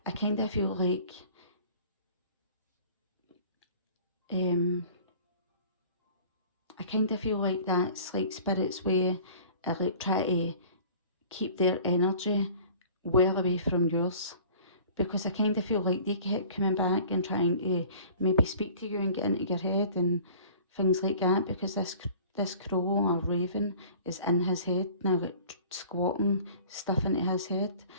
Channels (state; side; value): inverted; both; correlation -0.47